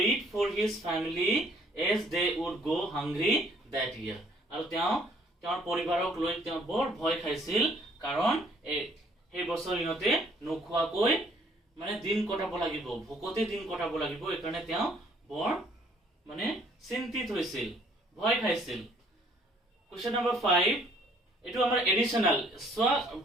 for his family as they would go hungry that year. আৰু তেওঁৰ পৰিবাৰক লৈ তেওঁ বৰ ভয় খাইছিল, কাৰণ এই বছৰ ইহঁতে নোখোৱাকৈ মানে দিন কটাব লাগিব, ভোকতে দিন কটাব লাগিব। এইকাৰণে তেওঁ বৰ মানে চিন্তিত হৈছিল, ভয় খাইছিল। কোৱেশ্চন নম্বৰ 5 এটো আমাৰ এডিশনাল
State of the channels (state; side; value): normal; both; correlation 0.62